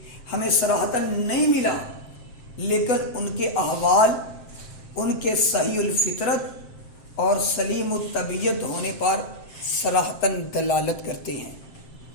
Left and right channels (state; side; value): late; right; 7.6 ms